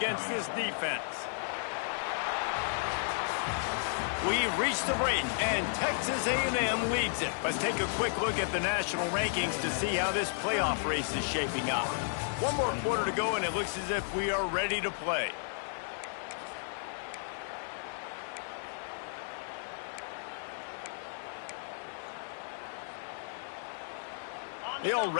this defense. We've reached the break, and Texas A&M leads it. Let's take a quick look at the national rankings to see how this playoff race is shaping up. One more quarter to go, and it looks as if we are ready to play. They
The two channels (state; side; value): silent; right; digital silence